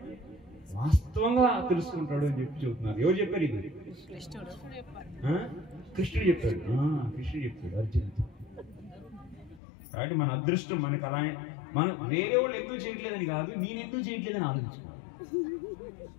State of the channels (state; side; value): drops out; right; at 9.6 s